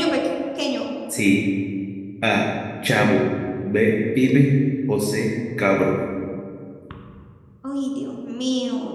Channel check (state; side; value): identical; both; correlation 1.00